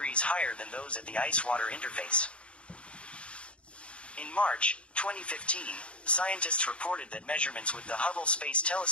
higher than those at the ice-water interface. In March 2015, scientists reported that measurements with the Hubble Space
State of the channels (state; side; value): late; right; 0.059 ms